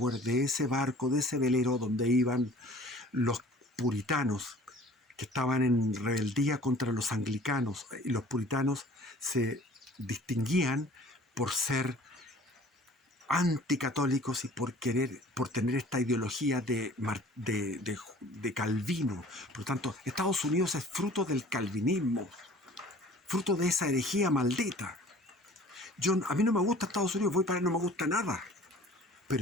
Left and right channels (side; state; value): both; normal; correlation 0.48